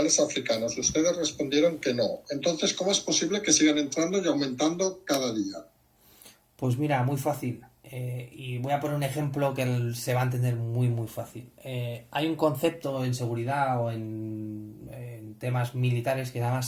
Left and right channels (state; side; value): identical; both; correlation 1.00